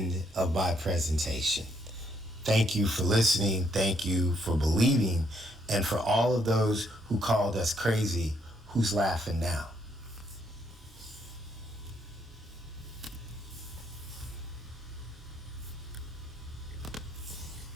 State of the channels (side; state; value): both; normal; correlation 0.73